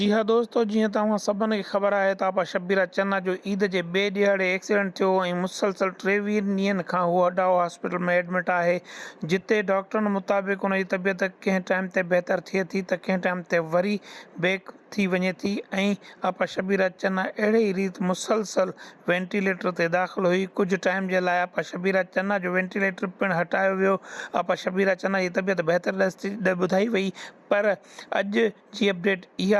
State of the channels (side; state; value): both; identical; correlation 1.00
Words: हाँ दोस्तों, जीअं तव्हां सभिनी खे ख़बर आहे त आपा शब्बीरा चन्ना जो ईद जे ॿिए ॾियारे एक्सीडेंट थियो ऐं मुसलसल 23 ॾींहंनि खां उहो अडाओ हॉस्पिटल में एडमिट आहे, जिते डॉक्टरनि मुताबिक़ उन जी तबियत कंहिं टाइम ते बहितर थिए थी त कंहिं टाइम ते वरी बेक थी वञे थी। ऐं आपा शब्बीरा चन्ना अहिड़े ई रीति मुसलसल वेंटिलेटर ते दाख़िल हुई। कुझु टाइम जे लाइ आपा शब्बीरा चन्ना जो वेंटिलेटर पिणु हटायो वियो। आपा शब्बीरा चन्ना जी तबियत बहितर ॿुधाई वई, पर अॼु जी अपडेट